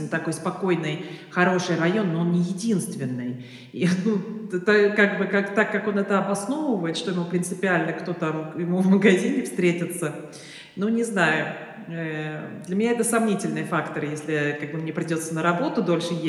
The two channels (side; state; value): both; identical; correlation 1.00